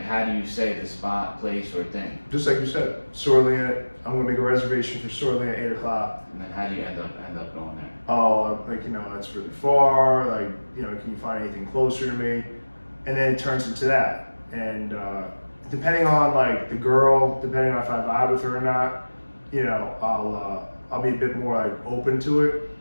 how do you say the spot, place, or thing? Just like you said, Sorlina, I'm gonna make a reservation for Sorlina at 8 o'clock. And then how do you end up going there? Oh, like, you know, that's really far, like, you know, can you find anything closer to me? And then it turns into that. And depending on like the girl, depending on if I vibe with her or not, you know, I'll be a bit more like open to it.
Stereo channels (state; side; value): inverted; both; correlation -1.00